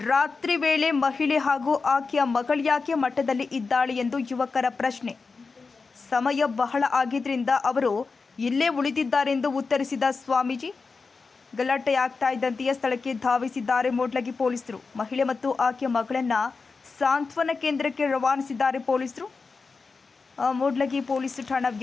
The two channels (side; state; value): right; quieter; 4.5 dB